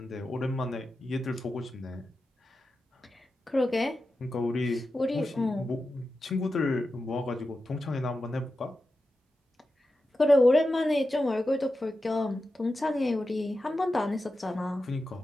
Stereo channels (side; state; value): both; normal; correlation 0.91